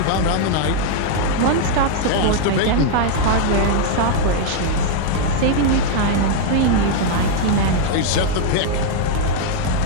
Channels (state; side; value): different; both; correlation 0.00